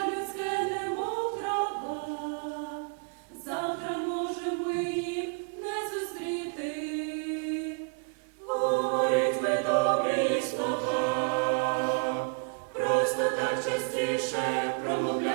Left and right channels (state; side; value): quieter; left; 38.0 dB